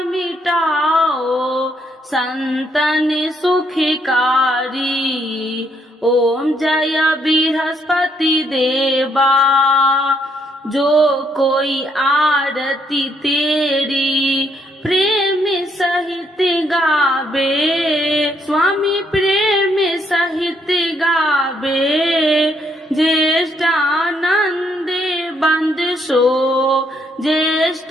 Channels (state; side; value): normal; both; correlation 0.72